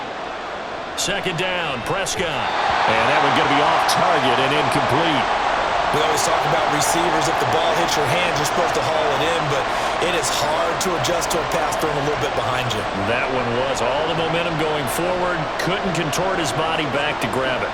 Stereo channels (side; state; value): both; identical; correlation 1.00